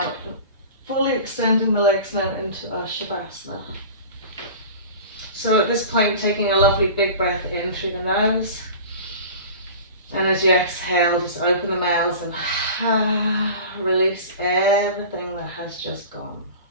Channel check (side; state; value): both; inverted; correlation -0.38